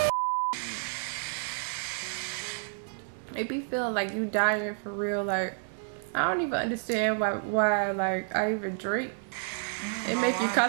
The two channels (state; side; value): silent; left; 58 dB below the other